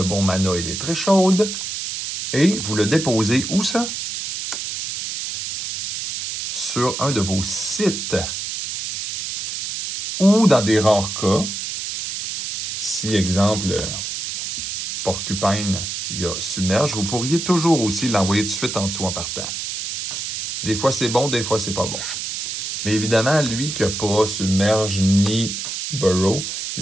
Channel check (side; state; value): right; noise; hiss, 5 dB below the sound